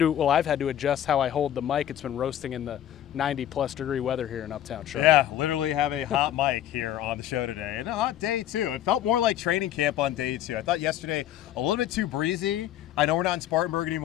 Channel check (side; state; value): right; quieter; 11.6 dB